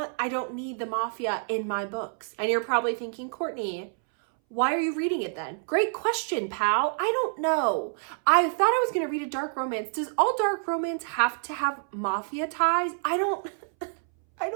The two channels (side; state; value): left; silent; 60 dB below the other